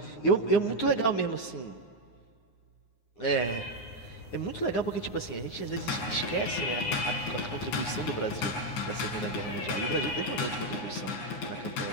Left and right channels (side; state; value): right; late; 9.6 ms